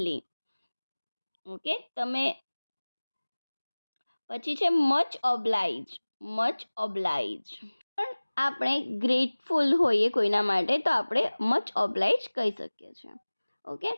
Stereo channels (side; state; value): both; inverted; correlation -1.00